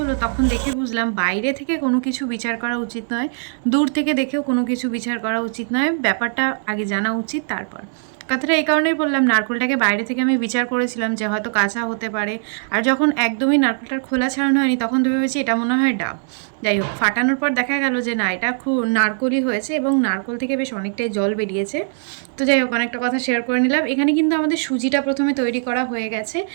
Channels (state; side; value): silent; left; 65 dB below the other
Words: তখন দেখে বুঝলাম বাইরে থেকে কোনো কিছু বিচার করা উচিত নয়, দূর থেকে দেখেও কোনো কিছু বিচার করা উচিত নয়, ব্যাপারটা আগে জানা উচিত তারপর। কথাটা এই কারণেই বললাম, নারকেলটাকে বাইরে থেকে আমি বিচার করেছিলাম যে হয়তো কাঁচা হতে পারে, আর যখন একদমই নারকেলটার খোলা ছাড়ানো হয়নি, তখন তো ভেবেছি এটা মনে হয় ডাব। যাই হোক, ফাটানোর পর দেখা গেল যে না, এটা খুব নারকলই হয়েছে, এবং নারকল থেকে বেশ অনেকটাই জল বেরিয়েছে। তো যাই হোক, অনেকটা কথা শেয়ার করে নিলাম। এখানে কিন্তু আমাদের সুজিটা প্রথমে তৈরি করা হয়ে গেছে,